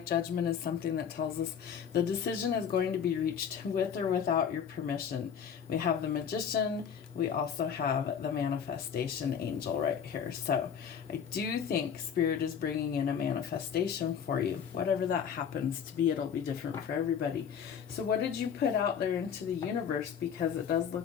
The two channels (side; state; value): right; quieter; 7.6 dB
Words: Judgment is something that tells us the decision is going to be reached with or without your permission. We have the Magician. We also have the Manifestation Angel right here. So I do think Spirit is bringing in a manifestation for you. Whatever that happens to be, it'll be different for everybody. So what did you put out there into the universe? Because it does